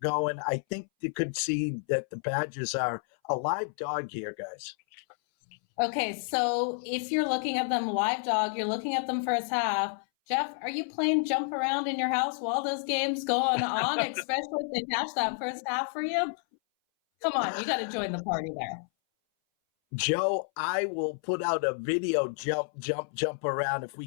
going, I think you could see that the Badgers are a live dog here, guys. Okay, so if you're looking at them live dog, you're looking at them first half. Jeff, are you playing jump around in your house while those games going on, especially if they catch that first half for you? Come on, you got to join the party there. Joe, I will put out a video jump around if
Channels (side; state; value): right; silent; 58 dB below the other